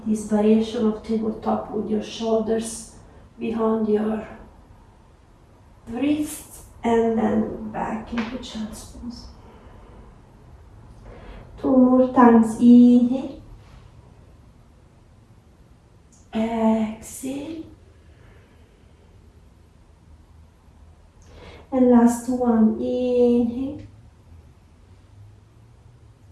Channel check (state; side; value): identical; both; correlation 1.00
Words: this variation of tabletop with your shoulders behind your wrist, and then back into child's pose. 2 more times. Inhale, exhale, and last one. Inhale,